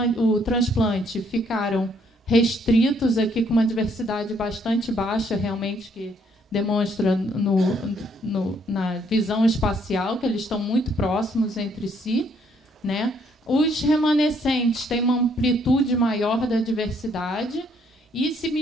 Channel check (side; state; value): both; normal; correlation 0.68